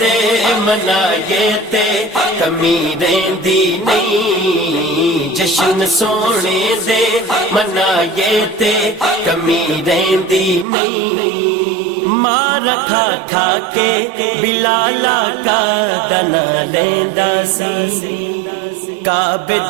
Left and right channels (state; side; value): drops out; left; at 10.7 s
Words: منائے تے کمی رہندی نہیں، جشن سونے دے منائے تے کمی رہندی نہیں، مار کھا کھا کے بلالا کا دنا لیندا سی، کعبے